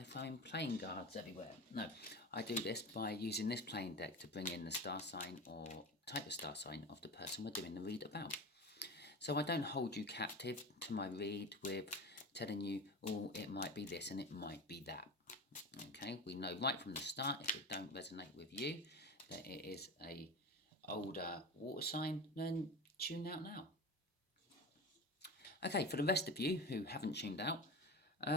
throwing playing cards everywhere. No, I do this by using this playing deck to bring in the star sign or type of star sign of the person we're doing the read about. So I don't hold you captive to my read with telling you, oh, it might be this and it might be that. Okay, we know right from the start, if it don't resonate with you, that it is a older water sign, then tune out now. Okay, for the rest of you who haven't tuned out,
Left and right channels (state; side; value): normal; both; correlation 0.28